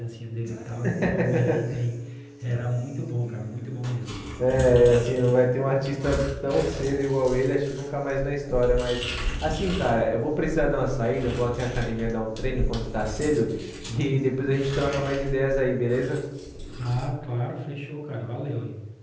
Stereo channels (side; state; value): both; identical; correlation 1.00